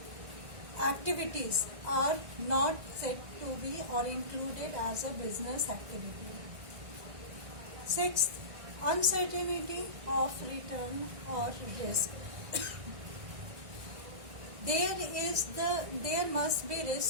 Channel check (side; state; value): left; late; 1.6 ms